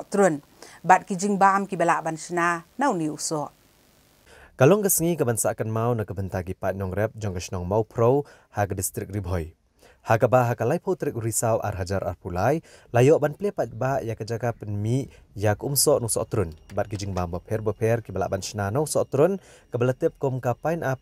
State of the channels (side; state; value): both; identical; correlation 1.00